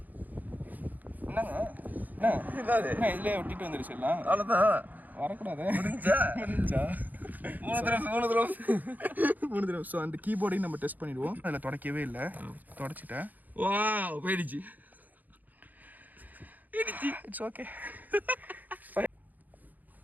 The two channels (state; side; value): late; left; 0.083 ms